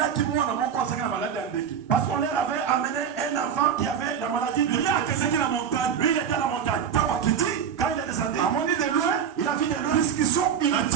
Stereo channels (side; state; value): left; quieter; 7.9 dB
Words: Parce qu'on leur avait amené un enfant qui avait la maladie de Lui, il était à la montagne. Quand il est descendu, de loin, il a vu de loin. Discussion